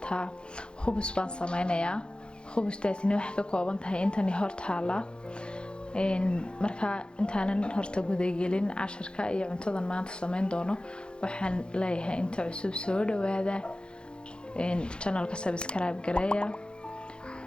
خبز بان سمينا يا خبز تاتيني وحكا كوابنتها إنتاني هورتها marka intaanan horta gudagelin casharka iyo cuntadan maanta sameyn doono waxaan leeyahay inta cusub soo dhawaada channelka subscribe gareeya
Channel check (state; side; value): late; right; 0.052 ms